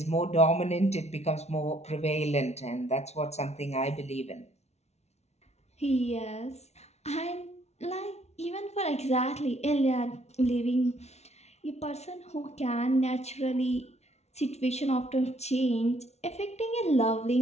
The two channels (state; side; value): late; right; 0.31 ms